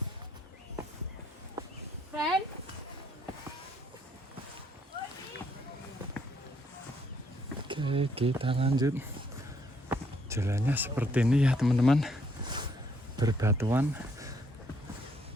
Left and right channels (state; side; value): normal; both; correlation 0.70